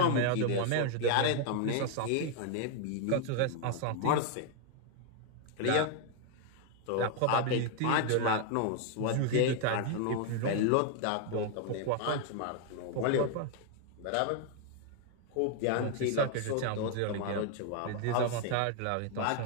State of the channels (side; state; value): both; different; correlation 0.00